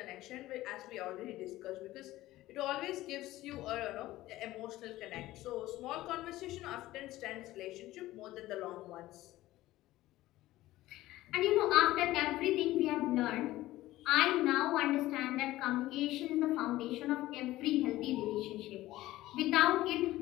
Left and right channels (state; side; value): quieter; right; 16.4 dB